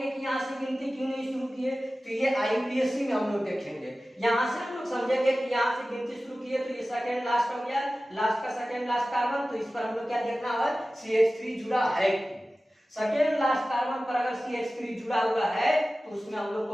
कि यहाँ से गिनती क्यों नहीं शुरू किए, तो ये IUPAC में हम लोग देखेंगे, यहाँ से हम लोग समझेंगे कि यहाँ से गिनती शुरू किए तो ये सेकेंड लास्ट हो गया, लास्ट का सेकेंड लास्ट कार्बन, तो इस पर हम लोग क्या देखना है, CH3 जुड़ा है। सेकेंड लास्ट कार्बन पर अगर CH3 जुड़ा हुआ है तो उसमें हम लोग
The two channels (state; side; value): normal; both; correlation 0.96